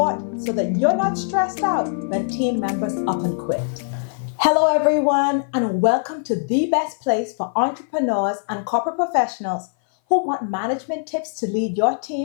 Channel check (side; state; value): right; silent; 58 dB below the other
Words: so that you're not stressed out when team members up and quit. Hello everyone and welcome to the best place for entrepreneurs and corporate professionals who want management tips to lead your